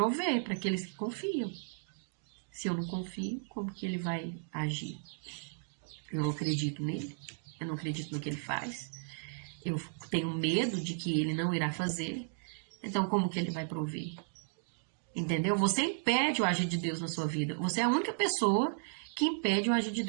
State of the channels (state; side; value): silent; left; digital silence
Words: para aqueles que confiam. Se eu não confio, como que ele vai agir? Eu não acredito nele, eu não acredito no que ele faz. Eu tenho medo de que ele não irá fazer. Então, como que ele vai prover? Entendeu? Você impede o agir de Deus na sua vida. Você é a única pessoa que impede o agir de